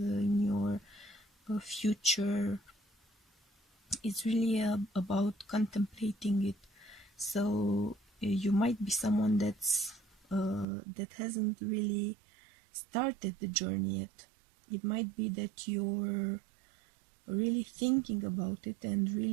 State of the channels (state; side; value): drops out; left; at 10.7 s